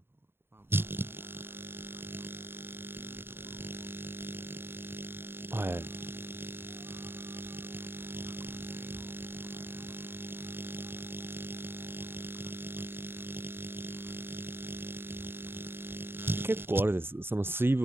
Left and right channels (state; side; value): late; left; 0.11 ms